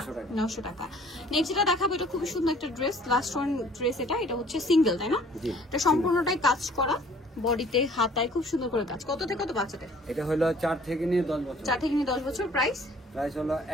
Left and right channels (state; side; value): normal; both; correlation 0.54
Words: 900 টাকা। 900 টাকা। নেক্সট যেটা দেখাবো এটা খুবই সুন্দর একটা ড্রেস, লাস্ট ওয়ান ড্রেস, এটা হচ্ছে সিঙ্গেল, তাই না? জি। এটা সম্পূর্ণটাই কাজ করা, বডিতে হাতায় খুব সুন্দর করে কাজ। কত থেকে কত বাচ্চাদের? এটা হলো 4 থেকে নিয়ে 10 বছর। 4 থেকে নিয়ে 10 বছর, প্রাইস প্রাইস হলো